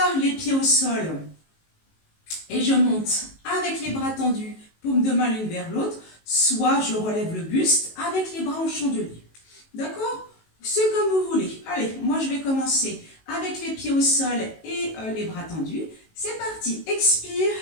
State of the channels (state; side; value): late; right; 19 ms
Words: les pieds au sol, et je monte avec les bras tendus, paume de main l'une vers l'autre, soit je relève le buste avec les bras en chandelier. D'accord? C'est comme vous voulez. Allez, moi je vais commencer avec les pieds au sol et les bras tendus. C'est parti, expire.